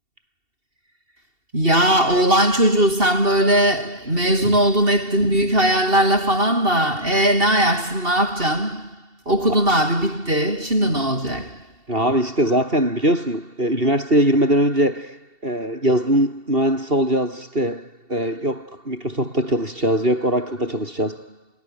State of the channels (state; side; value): late; left; 2.7 ms